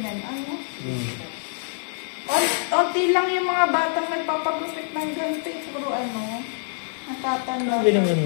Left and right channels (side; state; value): right; silent; 62 dB below the other